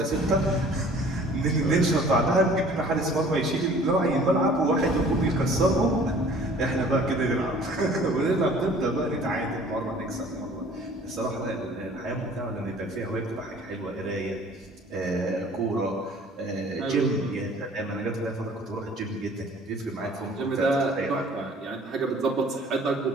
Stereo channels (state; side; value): normal; both; correlation 0.51